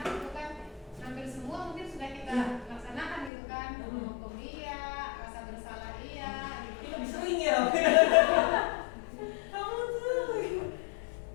itu kan hampir semua mungkin sudah kita laksanakan gitu kan, menghukum dia, rasa bersalah iya, gitu. Ini lebih sering ya. Kamu tuh.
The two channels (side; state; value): right; drops out; at 3.3 s